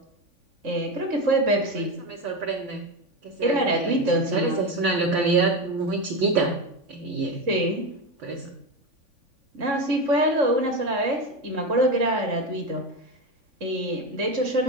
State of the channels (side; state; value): left; late; 3.5 ms